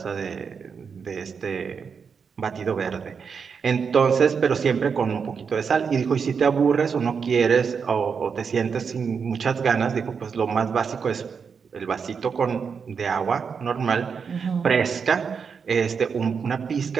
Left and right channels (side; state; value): left; quieter; 6.1 dB